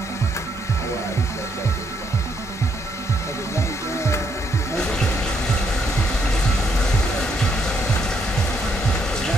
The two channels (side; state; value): both; normal; correlation 0.74